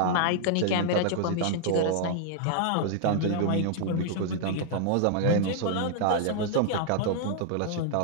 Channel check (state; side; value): different; both; correlation -0.01